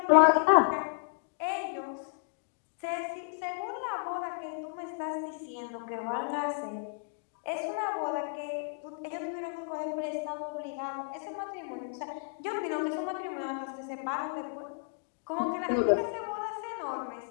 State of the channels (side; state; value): right; silent; digital silence